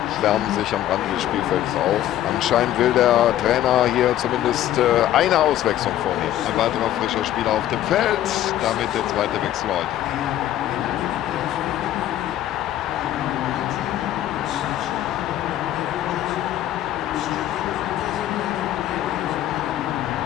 wärmen sich am Rande des Spielfelds auf. Anscheinend will der Trainer hier zumindest eine Auswechslung vornehmen. Ein weiterer frischer Spieler auf dem Feld. Damit der zweite Wechsel heute.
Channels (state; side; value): quieter; right; 12.7 dB